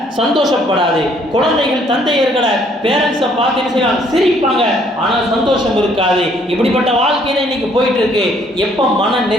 சந்தோஷப்படாது. குழந்தைகள் தந்தையர்களை பேரண்ட்ஸை பார்த்து என்ன செய்வாங்க, சிரிப்பாங்க, ஆனால் சந்தோஷம் இருக்காது. இப்படிப்பட்ட வாழ்க்கை தான் இன்னைக்கு போயிட்டு இருக்கு. எப்போ மன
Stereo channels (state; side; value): normal; both; correlation 0.64